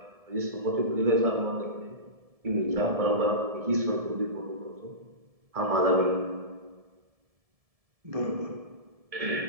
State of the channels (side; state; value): left; late; 1.7 ms